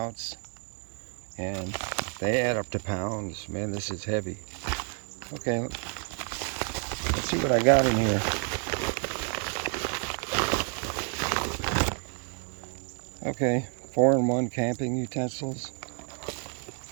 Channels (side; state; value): left; quieter; 39.7 dB